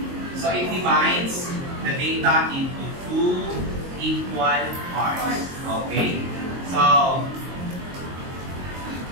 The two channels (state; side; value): late; left; 22 ms